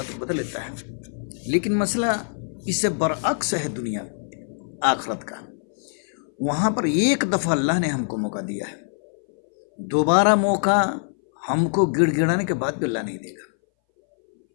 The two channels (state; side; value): silent; right; 60 dB below the other